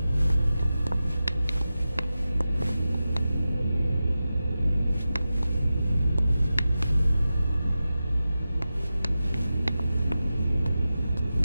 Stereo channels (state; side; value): inverted; both; correlation -0.93